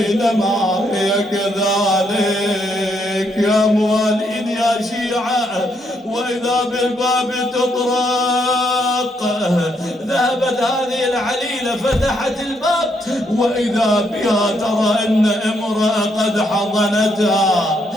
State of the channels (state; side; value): normal; both; correlation 0.75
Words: هي كذلك يا موالين يا شيعة واذا بالباب تطرق، ذهبت هذه العليلة فتحت الباب واذا بها ترى ان امرأة قد حضنتها.